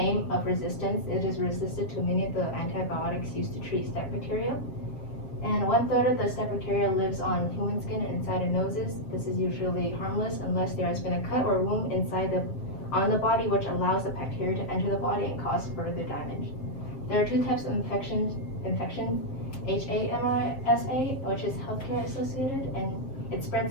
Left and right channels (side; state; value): right; late; 7.5 ms